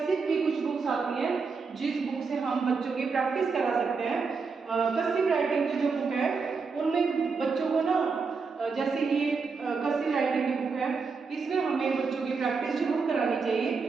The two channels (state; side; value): quieter; left; 4.9 dB